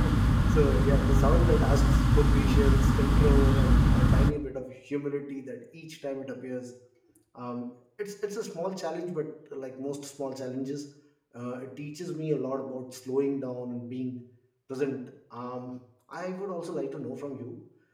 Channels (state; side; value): identical; both; correlation 1.00